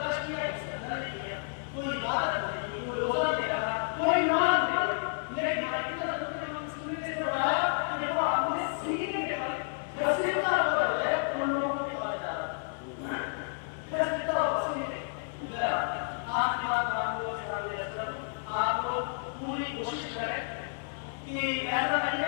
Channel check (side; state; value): right; silent; 57 dB below the other